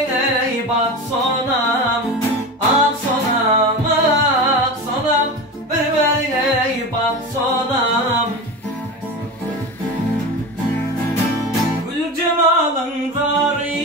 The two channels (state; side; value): normal; both; correlation 0.27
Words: bak sonam. Ak sonam, ak sonam, bir-birine bak sonam. Gül cemalın